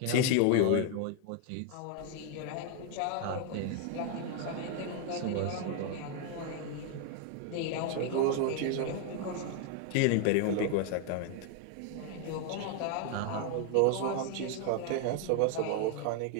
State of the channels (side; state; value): both; different; correlation 0.00